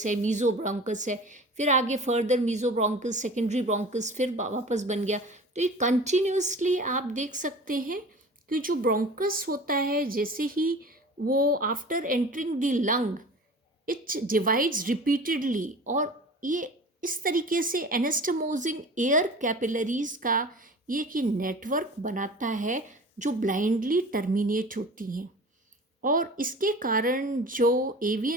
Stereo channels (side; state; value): both; normal; correlation 0.39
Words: है, मीजो ब्रोंकस है, फिर आगे further mesobronchus, secondary bronchus, फिर वापस बन गया। तो ये कंटिन्यूसली आप देख सकते हैं कि जो ब्रोंकस होता है जैसे ही वो after entering the lung it divides repeatedly, और ये इस तरीके से एनास्टमोजिंग एयर कैपिलरीज का ये कि नेटवर्क बनाता है जो ब्लाइंडली टर्मिनेट होती हैं, और इसके कारण जो